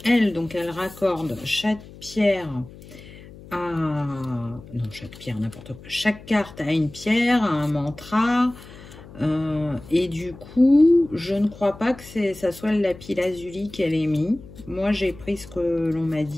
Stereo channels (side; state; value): left; noise; hum, 18 dB below the sound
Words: elle, donc, elle raccorde chaque pierre à... Non, chaque pierre, n'importe quoi. Chaque carte a une pierre, a un mantra. Et du coup, je ne crois pas que ça soit le lapis lazuli qu'elle ait mis. Moi, j'ai pris ce que l'on m'a